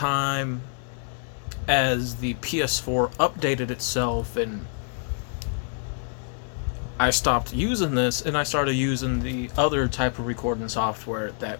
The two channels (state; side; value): silent; right; 59 dB below the other